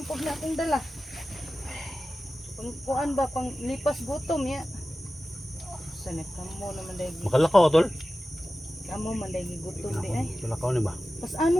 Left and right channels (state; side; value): normal; both; correlation 0.95